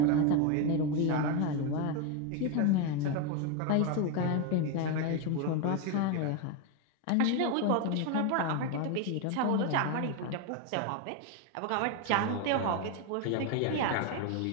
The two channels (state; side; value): different; both; correlation 0.02